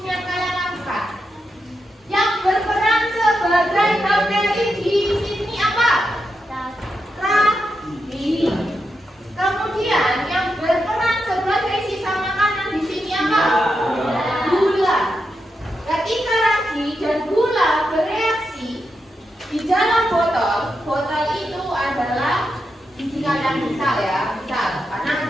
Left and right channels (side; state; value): both; normal; correlation 0.86